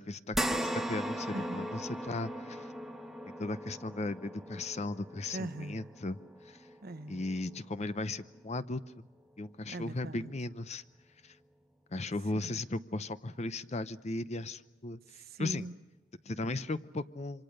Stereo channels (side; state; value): both; normal; correlation 0.71